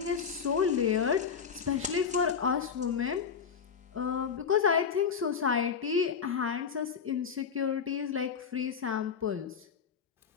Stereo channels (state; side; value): quieter; right; 6.7 dB